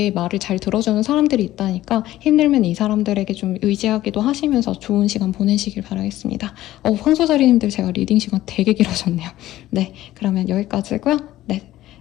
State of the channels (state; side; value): quieter; right; 14.9 dB